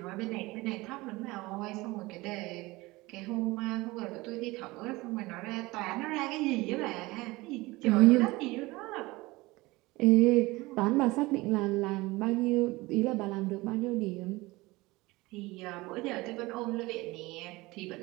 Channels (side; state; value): left; quieter; 21.4 dB